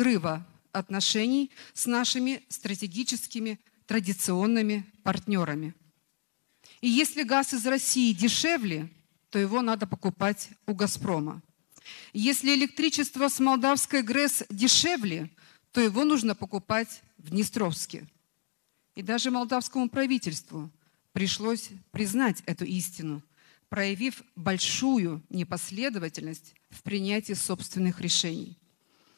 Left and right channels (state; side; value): silent; right; digital silence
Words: отношений с нашими стратегическими традиционными партнерами. И если газ из России дешевле, то его надо покупать у «Газпрома». Если электричество с молдавской ГРЭС дешевле, то его нужно покупать в Днестровске. И даже молдавскому правительству пришлось признать эту истину, проявив большую непоследовательность в принятии собственных решений.